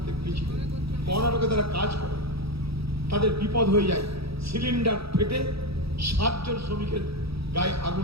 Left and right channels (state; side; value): late; left; 0.77 ms